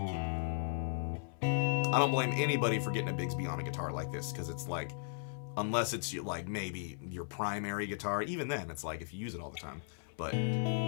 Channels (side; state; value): right; silent; 54 dB below the other